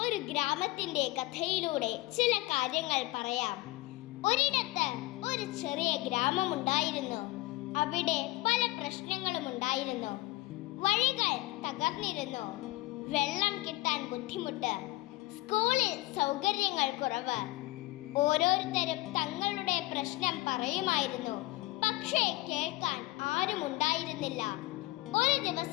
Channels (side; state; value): right; quieter; 19.8 dB